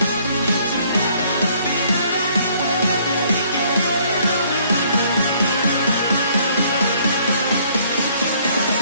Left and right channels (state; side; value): inverted; both; correlation -0.62